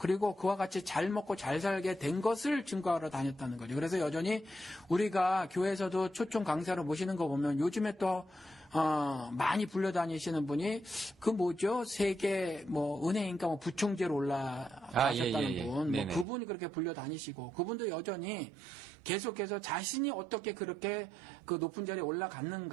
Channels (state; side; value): drops out; left; at 16.2 s